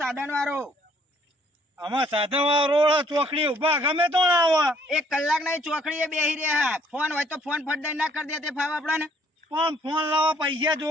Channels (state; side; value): normal; both; correlation 0.63